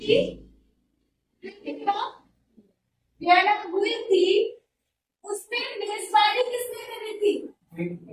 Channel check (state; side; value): identical; both; correlation 1.00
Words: वियना हुई थी, उसमें मेजबानी किसने करी थी?